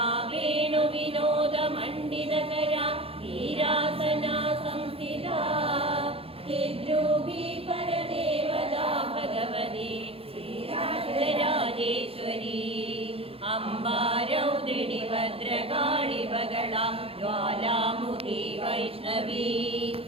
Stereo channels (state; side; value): late; left; 0.27 ms